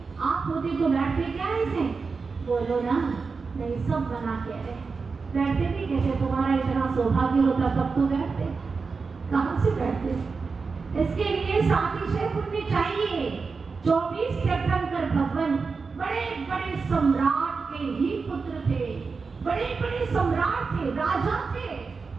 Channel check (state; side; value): quieter; left; 4.7 dB